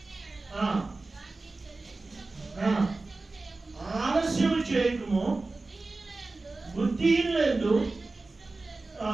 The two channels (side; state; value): left; quieter; 3.4 dB